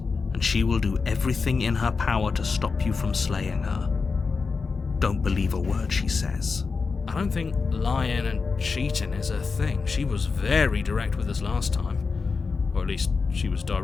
and she will do everything in her power to stop you from slaying her. Don't believe a word she says. I don't think lying and cheating is her thing. She was very direct with us last time. Or at least she was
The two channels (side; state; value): right; quieter; 4.8 dB